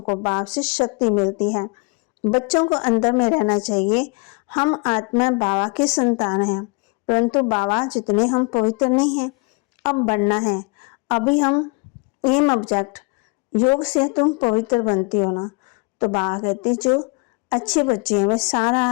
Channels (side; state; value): right; quieter; 30.7 dB